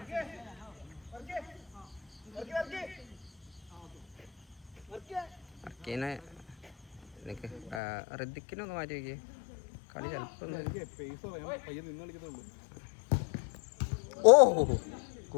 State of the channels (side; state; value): right; drops out; at 7.8 s